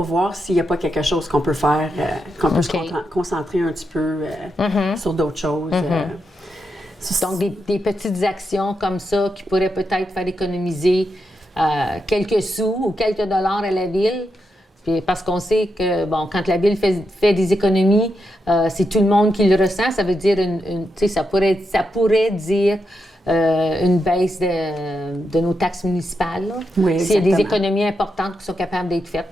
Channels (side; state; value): both; normal; correlation 0.85